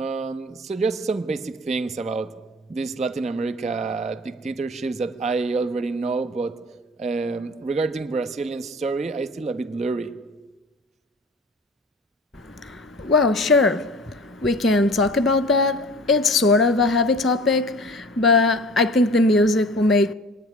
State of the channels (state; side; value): normal; both; correlation 0.42